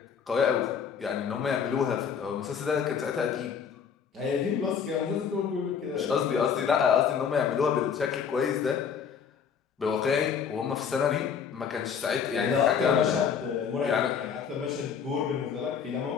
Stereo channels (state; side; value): quieter; right; 7.0 dB